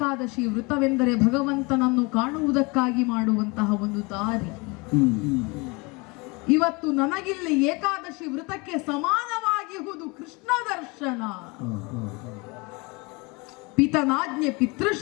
ವೃತವೆಂದರೆ ಭಗವಂತನನ್ನು ಕಾಣುವುದಕ್ಕಾಗಿ ಮಾಡುವಂತಹ ಒಂದು ದಾರಿ. ಇವತ್ತು ನನಗಿಲ್ಲಿ ಏಕಾದಶಿ ವೃತಕ್ಕೆ ಸಮಾನವಾಗಿರುವುದು ಕೃಷ್ಣ ದರ್ಶನ. ಪಿತನಾಜ್ಞೆ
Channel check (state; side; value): quieter; right; 27.2 dB